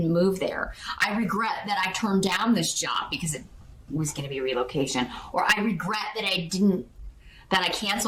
move there. I regret that I turned down this job because it was going to be relocation. Or I regret that I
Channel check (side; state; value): both; identical; correlation 1.00